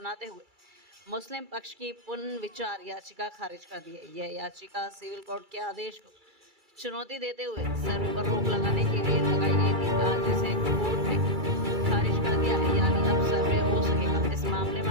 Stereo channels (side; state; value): left; late; 2.3 ms